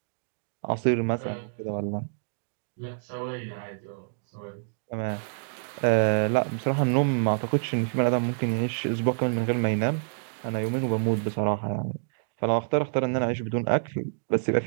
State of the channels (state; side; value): silent; left; digital silence